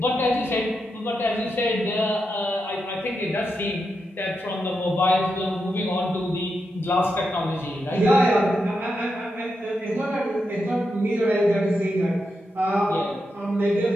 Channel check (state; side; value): normal; both; correlation 0.86